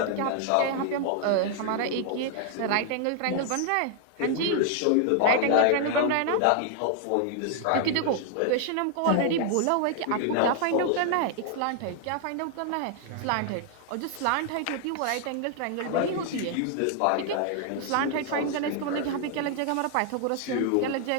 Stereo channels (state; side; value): different; both; correlation 0.00